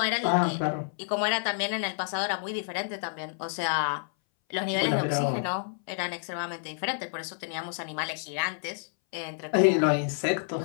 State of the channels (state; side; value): silent; right; 59 dB below the other